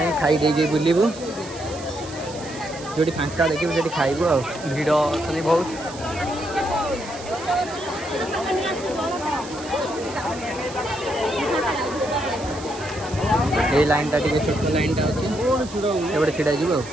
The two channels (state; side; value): noise; right; hiss, 15 dB below the sound